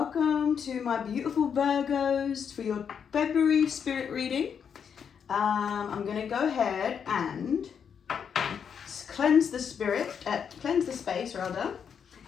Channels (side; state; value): right; quieter; 7.3 dB